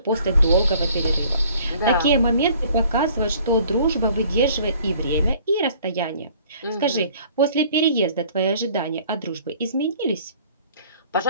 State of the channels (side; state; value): both; inverted; correlation -0.55